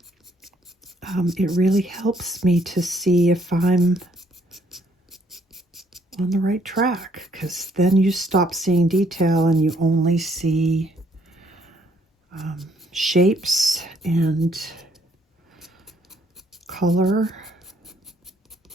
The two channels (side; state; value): both; normal; correlation 0.67